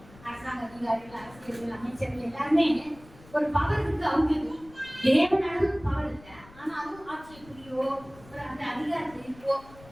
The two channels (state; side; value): noise; left; rumble, 22 dB below the sound